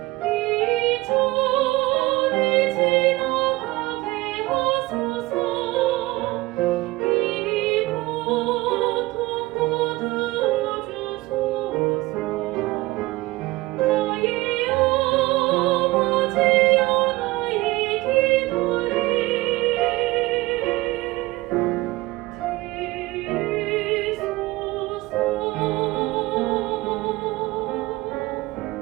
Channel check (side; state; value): left; quieter; 20.2 dB